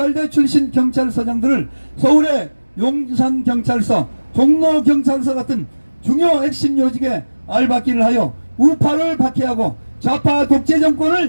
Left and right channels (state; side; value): inverted; both; correlation -1.00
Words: 출신 경찰서장들을 서울의 용산경찰서, 종로경찰서 같은 중요 핵심 요직에 알박기를 하여 우파를 박해하고 좌파 독재